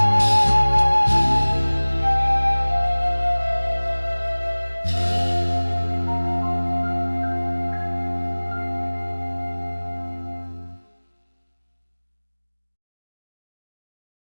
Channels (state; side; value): inverted; both; correlation -1.00